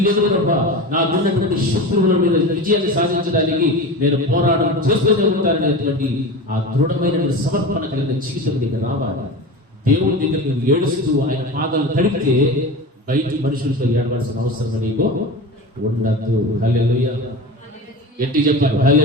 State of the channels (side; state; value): both; normal; correlation 0.28